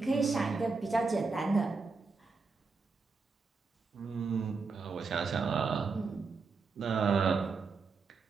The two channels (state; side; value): quieter; left; 4.5 dB